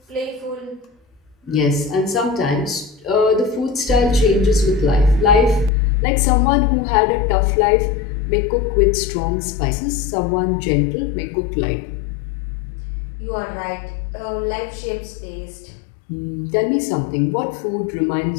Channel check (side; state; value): right; drops out; at 5.7 s